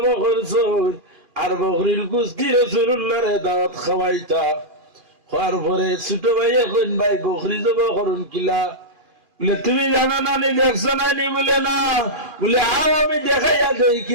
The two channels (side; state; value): left; late; 2.5 ms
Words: করছুন, আর বকরির কুস্তি রাসূলুল্লাহরে দাওয়াত খাওয়াইতা। হওয়ার পরে ছোট ভাইয়ে কইন, ভাই বকরি জব করুন কিলা? বলে তুমি জানো নানি, দেখছো নানি? বলে না। বলে আও আমি দেখাইয়া দেই